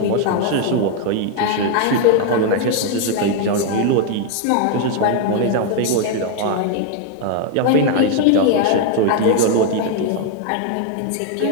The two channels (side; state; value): both; different; correlation 0.01